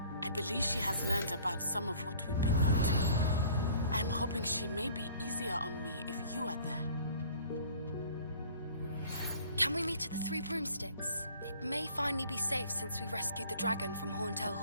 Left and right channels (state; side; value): inverted; both; correlation -0.52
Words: I believe she has learned about some of what we've been up to. I'm hoping she may be easier on me if you are there. Can we meet at the Three Broomsticks? It may finally be safe since we rescued the dragon from Horntail